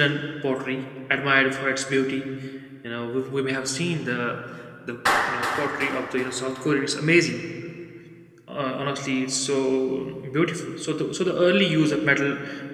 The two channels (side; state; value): both; identical; correlation 1.00